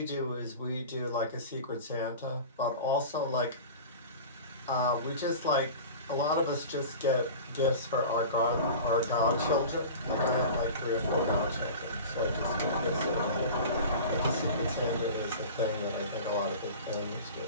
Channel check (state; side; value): inverted; both; correlation -0.36